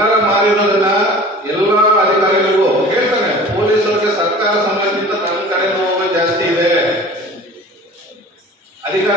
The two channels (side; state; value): both; normal; correlation 0.42